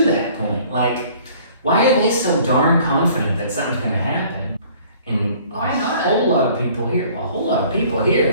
that point, like, why are they so darn confident that something's going to happen? And Why not? A whole lot of people here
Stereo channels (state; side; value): inverted; both; correlation -0.54